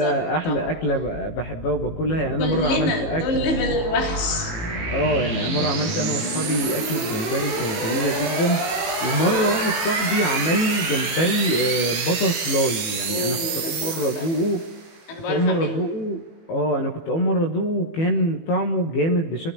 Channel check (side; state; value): right; late; 18 ms